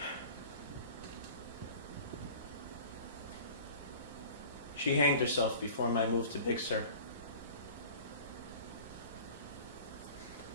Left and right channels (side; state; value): both; inverted; correlation -0.41